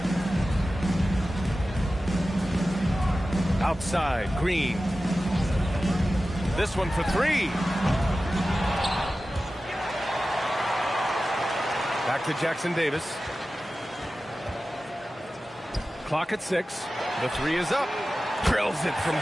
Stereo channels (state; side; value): normal; both; correlation 0.94